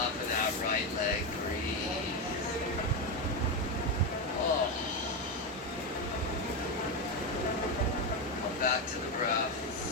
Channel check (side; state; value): both; normal; correlation 0.10